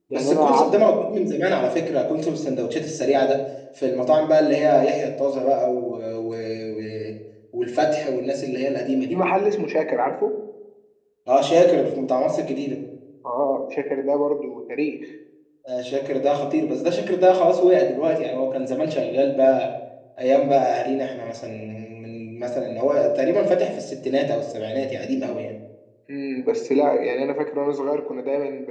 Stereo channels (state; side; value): identical; both; correlation 1.00